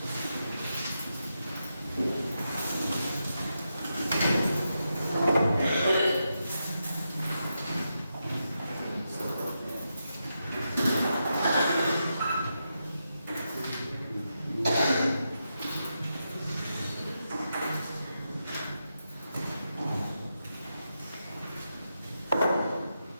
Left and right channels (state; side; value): inverted; both; correlation -0.86